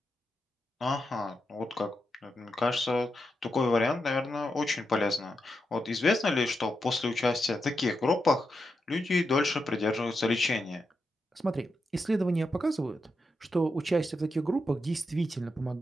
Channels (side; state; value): both; normal; correlation 0.86